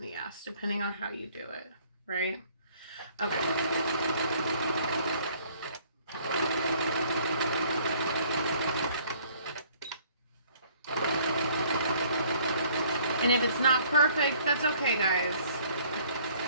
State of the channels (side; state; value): both; inverted; correlation -0.58